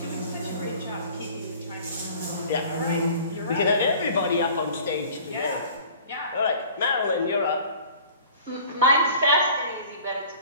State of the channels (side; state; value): both; inverted; correlation -0.46